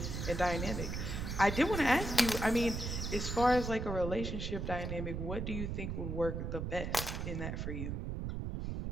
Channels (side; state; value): right; noise; rumble, 3 dB below the sound